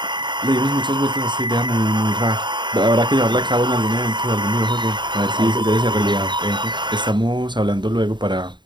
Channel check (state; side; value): late; left; 0.22 ms